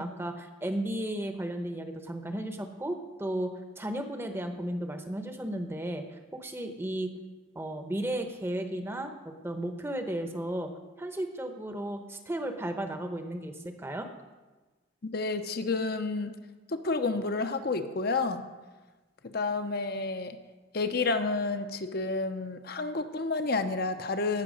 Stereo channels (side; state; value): both; normal; correlation 0.28